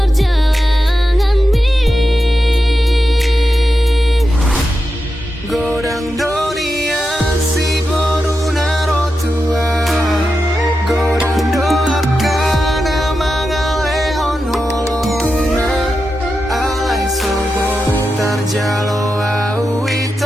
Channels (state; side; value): normal; both; correlation 0.89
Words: mi. Godang dunia si boru naro tua, godang doakan mangale on holongna, alai soboy tarjalo